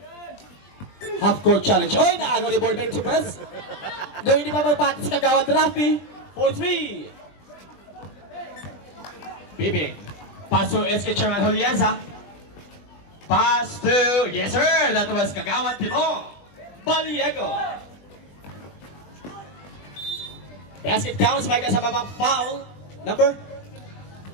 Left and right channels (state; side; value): late; right; 20 ms